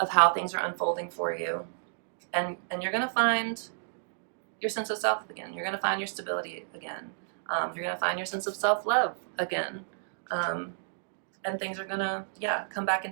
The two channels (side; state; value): left; silent; digital silence